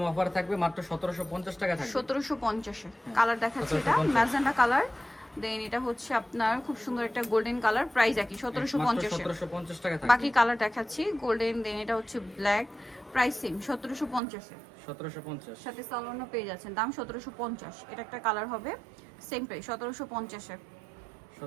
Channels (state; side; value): drops out; left; at 14.2 s